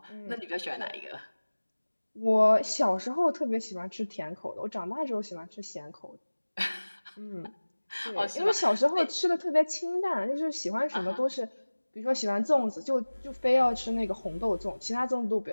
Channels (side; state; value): both; inverted; correlation -1.00